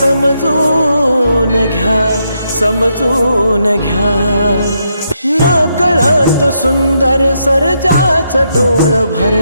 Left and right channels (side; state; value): both; inverted; correlation -0.79